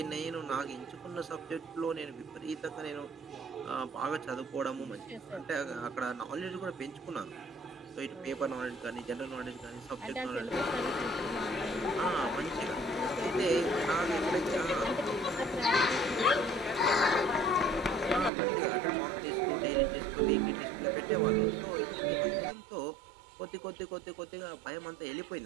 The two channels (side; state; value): left; drops out; at 18.3 s